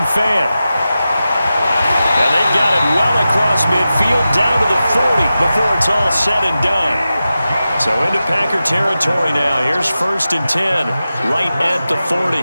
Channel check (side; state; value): both; inverted; correlation -0.93